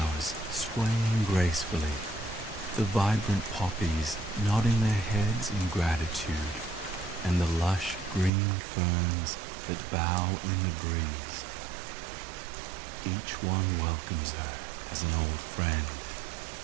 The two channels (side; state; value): left; drops out; at 8.3 s